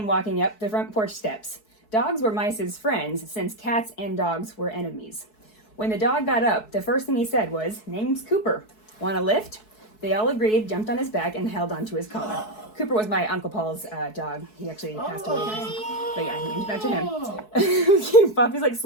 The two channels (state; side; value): late; right; 4.7 ms